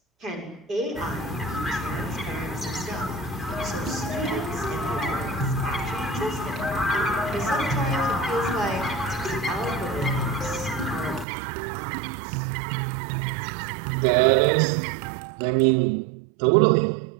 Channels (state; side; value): drops out; left; at 11.2 s